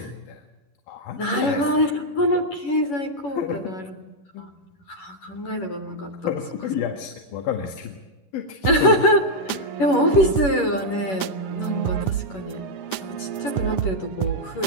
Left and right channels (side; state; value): right; late; 11 ms